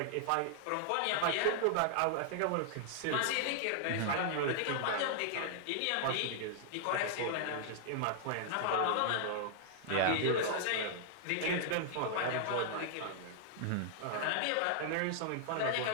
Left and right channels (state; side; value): different; both; correlation -0.01